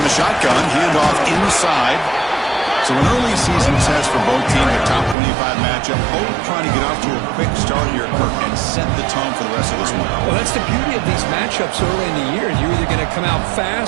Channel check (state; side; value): drops out; left; at 5.2 s